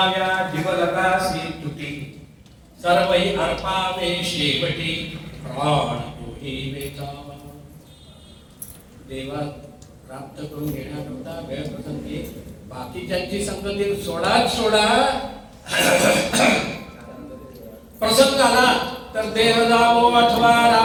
जीवलगासी तुटी, सर्वही अर्पावे शेवटी, प्राण तोही वेचावा. देवा प्राप्त करून घेण्याकरता वेळ प्रसंगी बाकीच्यांची संगती सोडा. प्रसंग आला तर देह जावो अथवा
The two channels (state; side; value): identical; both; correlation 1.00